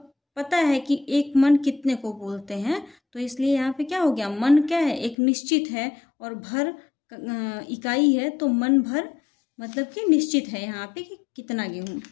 पता है कि एक मन कितने को बोलते हैं, तो इसलिए यहाँ पे क्या हो गया, मन क्या है, एक निश्चित है, और भर इकाई है, तो मन भर मतलब कि निश्चित है यहाँ पे कि कितना गेहूं।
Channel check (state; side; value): drops out; right; at 5.2 s